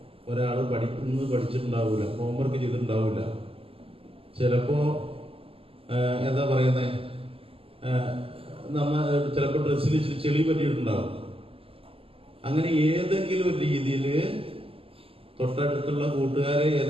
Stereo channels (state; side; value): late; left; 0.27 ms